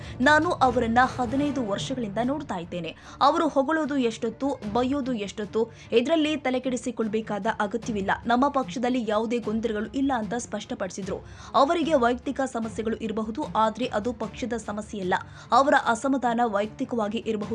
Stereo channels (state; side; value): identical; both; correlation 1.00